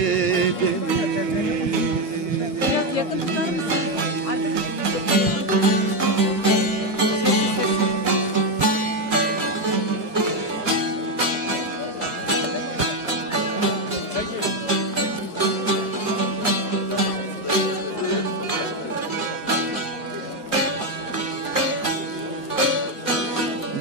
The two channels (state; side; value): normal; both; correlation 0.07